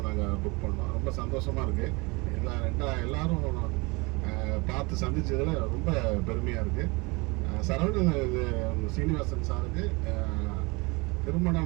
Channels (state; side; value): quieter; left; 26.7 dB